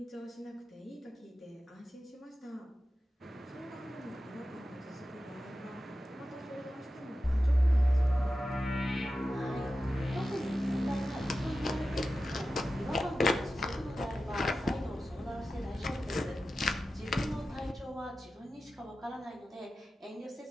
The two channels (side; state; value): both; normal; correlation 0.93